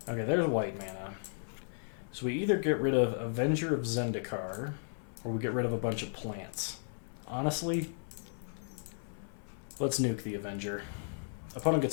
Okay, there's white mana. So we either get rid of Avenger of Zendikar, or we get rid of a bunch of plants. Honestly, let's nuke the Avenger. Opponent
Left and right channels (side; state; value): right; silent; 54 dB below the other